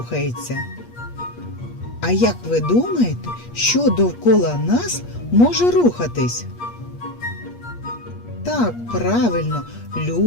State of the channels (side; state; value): right; late; 8.4 ms